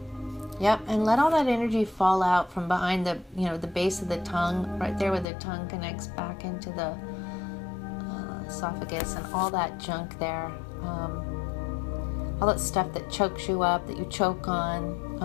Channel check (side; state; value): right; drops out; at 5.2 s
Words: Yep, and let all that energy fall out from behind the, the base of the tongue, right there where the tongue connects back into the esophagus, and all that junk there. All that stuff that chokes you up, that you choke on,